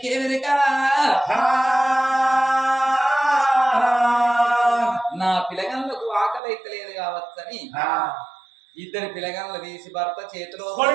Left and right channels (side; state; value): left; drops out; at 6.4 s